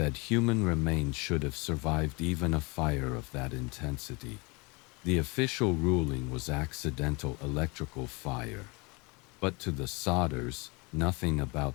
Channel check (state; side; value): quieter; right; 27.9 dB